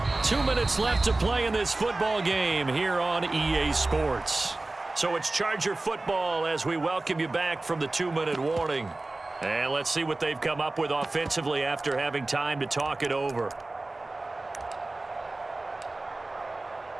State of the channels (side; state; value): left; quieter; 3.0 dB